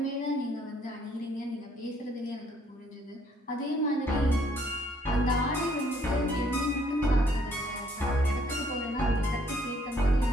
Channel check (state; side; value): normal; both; correlation 0.65